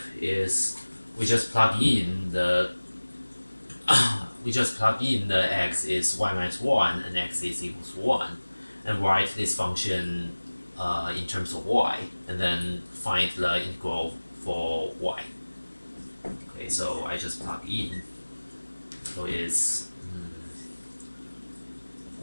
is we just plug in the x is y minus 1 and x is equals 1, and write this function in terms of y, and then find the integral for y. Okay, so I just plug in. So it's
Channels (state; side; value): inverted; both; correlation -1.00